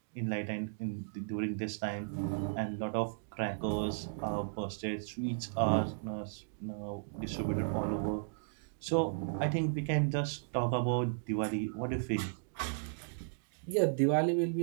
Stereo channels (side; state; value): left; silent; digital silence